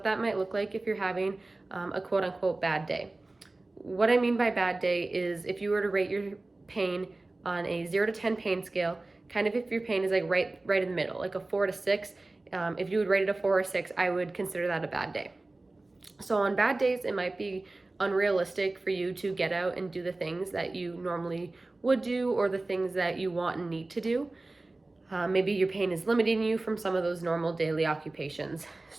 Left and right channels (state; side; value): quieter; left; 3.0 dB